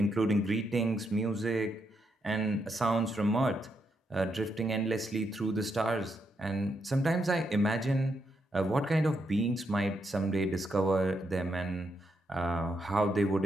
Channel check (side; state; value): both; normal; correlation 0.80